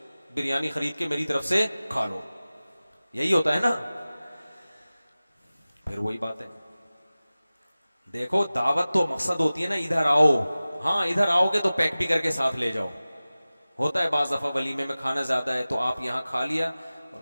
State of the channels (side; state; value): both; inverted; correlation -0.97